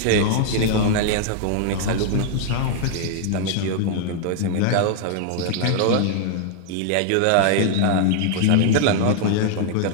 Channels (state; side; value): different; both; correlation 0.00